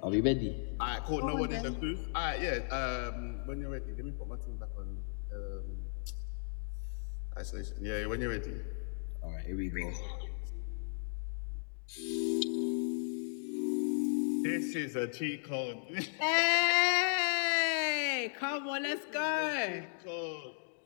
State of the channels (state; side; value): silent; right; digital silence